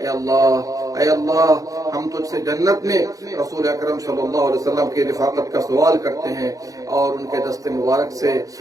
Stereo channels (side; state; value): left; late; 0.17 ms